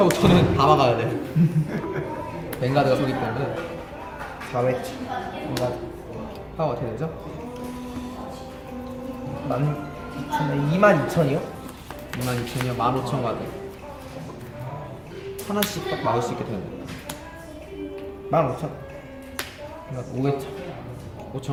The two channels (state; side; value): identical; both; correlation 1.00